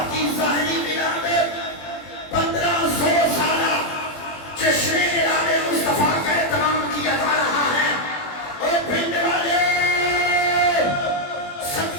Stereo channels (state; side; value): late; right; 21 ms